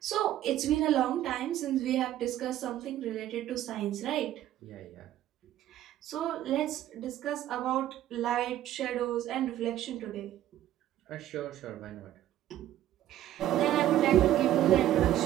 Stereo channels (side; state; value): left; quieter; 12.8 dB